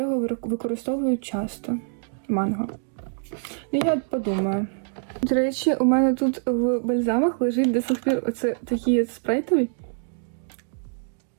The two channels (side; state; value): left; silent; digital silence